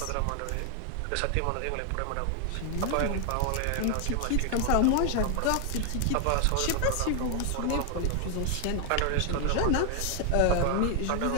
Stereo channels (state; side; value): different; both; correlation 0.00